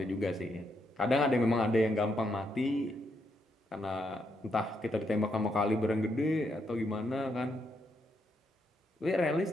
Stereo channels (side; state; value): both; normal; correlation 0.78